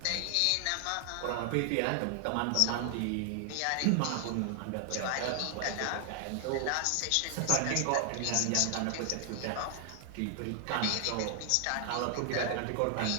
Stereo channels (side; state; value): both; different; correlation 0.00